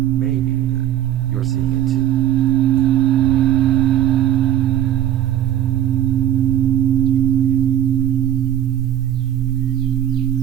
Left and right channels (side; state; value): left; quieter; 11.3 dB